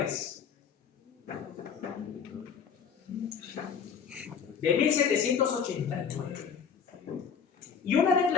De 1789. Y una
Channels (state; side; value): quieter; right; 6.8 dB